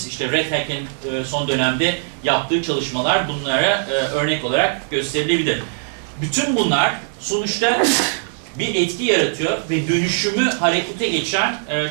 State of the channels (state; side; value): silent; left; 66 dB below the other